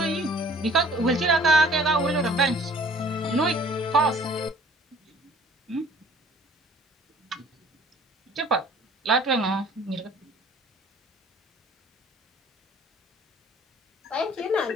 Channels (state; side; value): normal; both; correlation 0.53